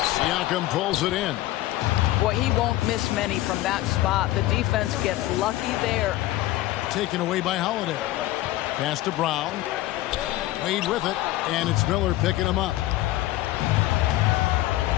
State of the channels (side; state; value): right; quieter; 16.2 dB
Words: Siakam pulls it in. Boy, he won't miss many from that spot. The defense gets lucky there. Taken away by Holiday. Pass to Brown. Wade with it. And it's Miller picking him up.